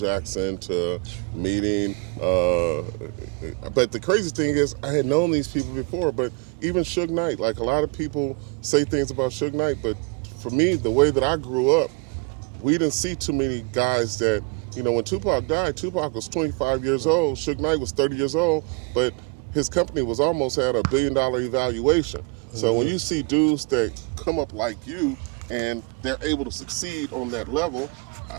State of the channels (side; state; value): left; quieter; 30.7 dB